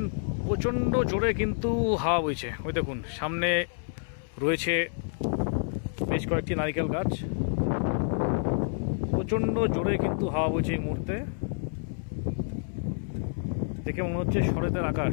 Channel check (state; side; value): silent; right; 59 dB below the other